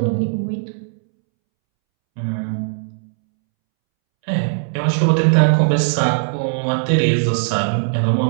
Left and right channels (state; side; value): silent; left; 66 dB below the other